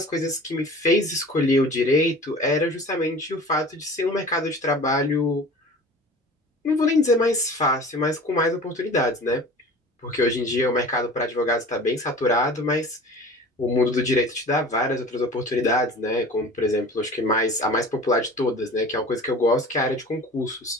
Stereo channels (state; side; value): normal; both; correlation 0.41